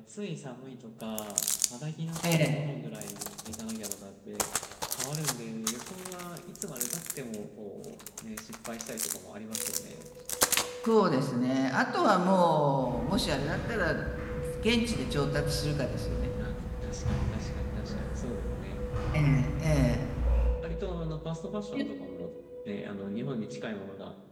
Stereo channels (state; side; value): identical; both; correlation 1.00